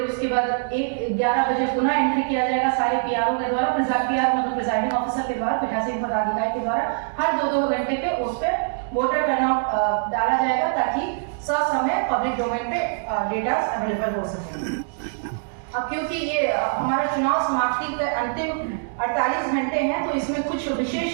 उसके बाद 11 बजे पुनः एंट्री किया जाएगा सारे पीआरओ के द्वारा, मतलब प्रिजाइडिंग ऑफिसर के द्वारा, पीठासीन पदाधिकारी के द्वारा हर 2-2 घंटे पे उस पर वोटर टर्नआउट डाला जाएगा ताकि ससमय पब्लिक डोमेन पे डेटा अवेलेबल हो सके। अब क्योंकि ये हमारा चुनाव समाप्ति के अंतिम 48 घंटे हैं तो इसमें कुछ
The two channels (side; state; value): left; silent; digital silence